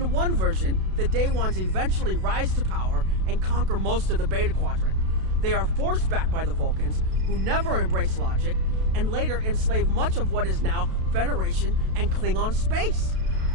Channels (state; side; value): late; left; 32 ms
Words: one version, the Day Ones eventually rise to power and conquer most of the Beta Quadrant. They are forced back by the Vulcans, who never embrace logic, and later enslave much of what is now Federation and Klingon space.